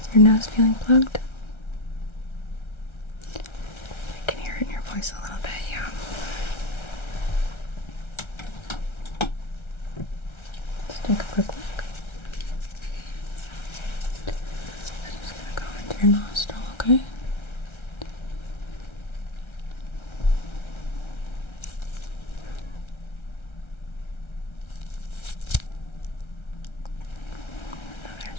Your nose feeling plugged? I can hear it in your voice a little bit, yeah. Let's take a quick look. I'm just gonna go into your nostril, okay? Other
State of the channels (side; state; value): right; late; 1.3 ms